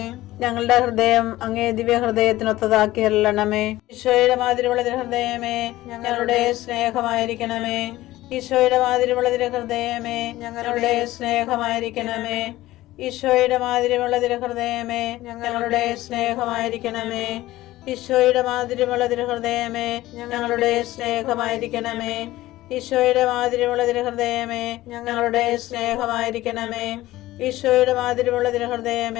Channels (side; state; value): right; quieter; 16.6 dB